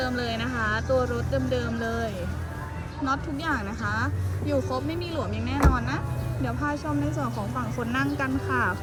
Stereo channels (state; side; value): identical; both; correlation 1.00